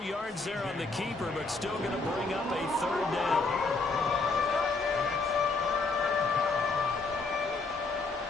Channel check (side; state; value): right; quieter; 3.8 dB